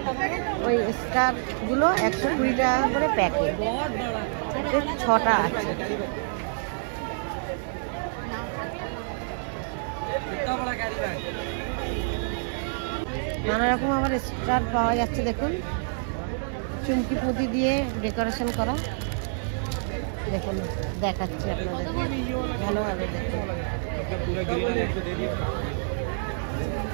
ওই স্টারগুলো 120 টাকা করে প্যাকেট, 6টা আছে। নানা রকম আবার স্টার পাওয়া যাচ্ছে, দেখুন চুমকি পুঁতি দিয়ে ডেকোরেশন করা। দেখুন দেখাচ্ছি আপনাদের ভালোভাবে, দেখুন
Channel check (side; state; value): left; silent; 60 dB below the other